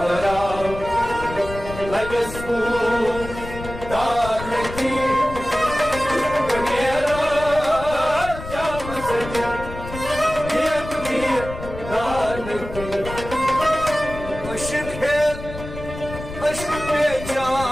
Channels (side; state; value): left; noise; rumble, 11 dB below the sound